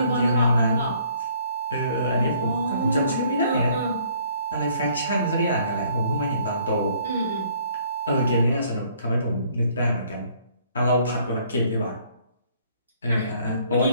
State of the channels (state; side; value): inverted; both; correlation -0.61